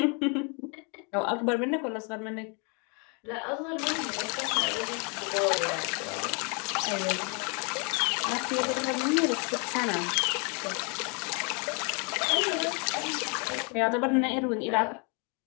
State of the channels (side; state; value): right; quieter; 35.1 dB